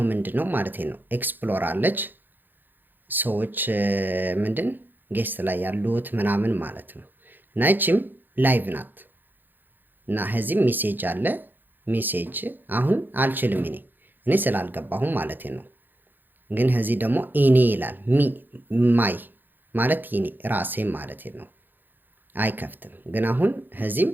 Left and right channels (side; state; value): left; late; 0.090 ms